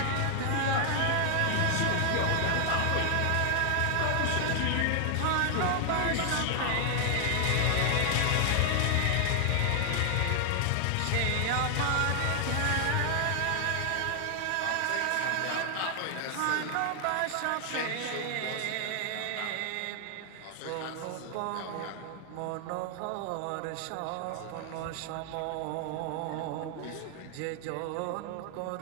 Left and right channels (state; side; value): different; both; correlation 0.00